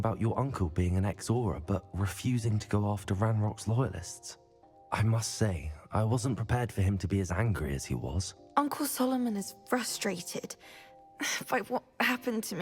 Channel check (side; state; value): both; identical; correlation 1.00